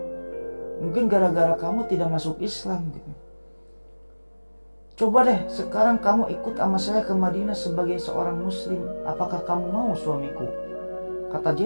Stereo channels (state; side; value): inverted; both; correlation -1.00